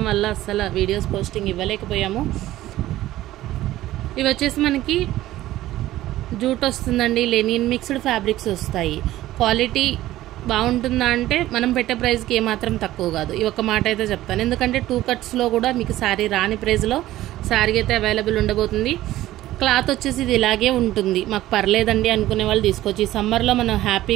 వల్ల అస్సలు వీడియోస్ పోస్టింగ్ ఇవ్వలేకపోయాము. ఇవి వచ్చేసి మనకి జూట్ వస్తుందండి, లెనిన్ మిక్స్డ్ ఫ్యాబ్రిక్స్ వస్తాయి. క్వాలిటీ బాగుంటుందా అంటే మనం పెట్టే ప్రైస్కి ఏమాత్రం తక్కువ కాదు. ఈ ఒక్క మాట అయితే చెప్తాను, ఎందుకంటే 2 cutsలో కూడా మీకు శారీ రాని ప్రైస్లో శారీ అయితే అవైలబుల్ ఉండబోతుంది. క్లాత్ వచ్చేసి ఇది ఇలాగే ఉంటుంది. మాకు పర్లేదండి అనుకునే వాళ్ళు తీసుకోవచ్చు. ఈ సమ్మర్లో మనం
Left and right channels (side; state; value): left; quieter; 15.1 dB